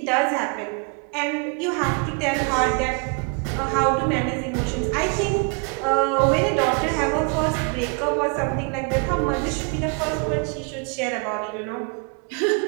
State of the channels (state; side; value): quieter; left; 35.3 dB